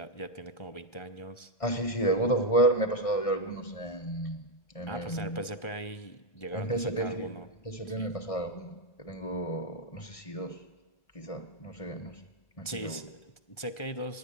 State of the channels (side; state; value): right; late; 1.4 ms